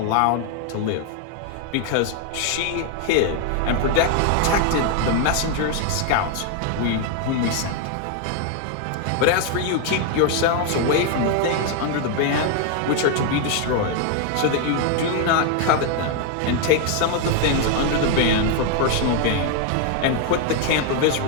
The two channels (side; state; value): both; different; correlation 0.01